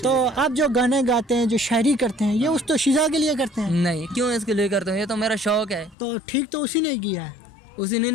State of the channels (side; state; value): right; drops out; at 6.0 s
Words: आप जो गाने गाते हैं, जो शायरी करते हैं, ये उस दोशीज़ा के लिए करते हैं? नहीं, क्यों इसके लिए करता हूँ, ये तो मेरा शौक है। तो ठीक तो उसी ने किया है। उसी ने